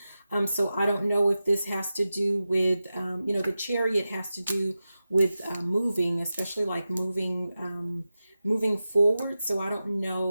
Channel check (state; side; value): inverted; both; correlation -0.93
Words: So I don't know if this has to do with, the Chariot has to do with moving, especially like moving forward. So I don't